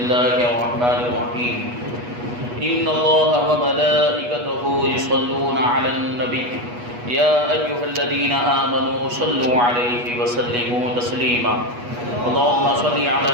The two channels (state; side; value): late; left; 8.3 ms